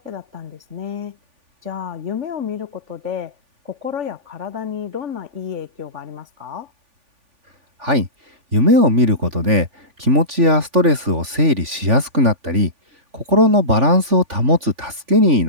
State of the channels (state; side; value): late; left; 3.5 ms